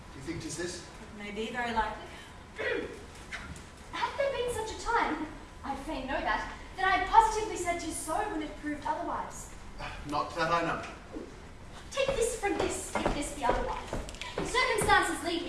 Do you think 'tis this? It may be, very likely. Had there been such a time, I'd fain know that I had positively said 'tis so when it proved otherwise. Not that I know. Take this from this, if this be otherwise. If circumstances lead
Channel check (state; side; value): identical; both; correlation 1.00